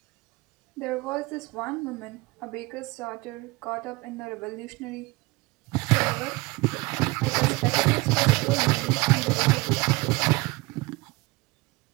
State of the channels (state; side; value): quieter; left; 23.4 dB